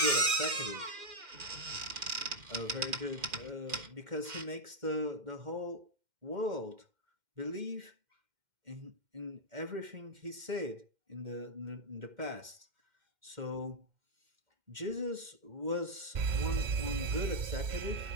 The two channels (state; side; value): late; left; 2.1 ms